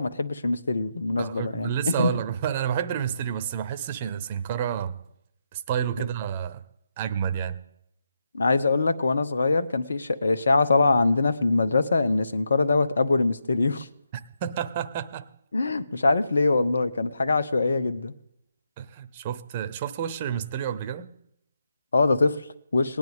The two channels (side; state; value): both; inverted; correlation -0.82